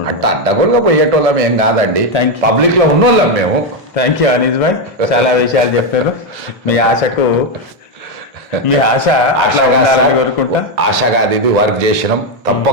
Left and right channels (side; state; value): both; normal; correlation 0.05